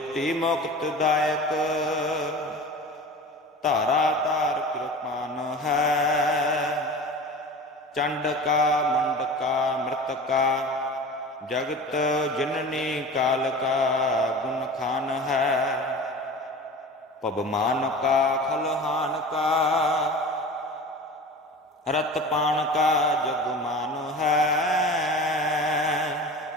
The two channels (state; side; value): normal; both; correlation 0.35